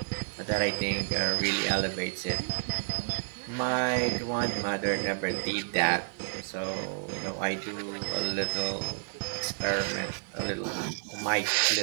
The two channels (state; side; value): silent; left; digital silence